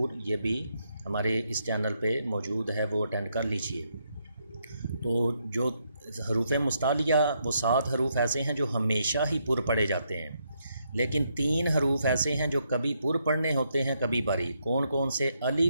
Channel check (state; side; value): inverted; both; correlation -0.77